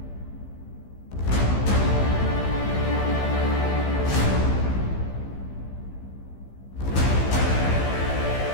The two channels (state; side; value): late; right; 15 ms